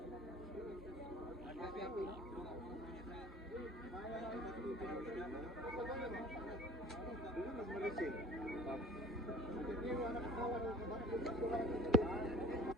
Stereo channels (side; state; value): both; normal; correlation 0.45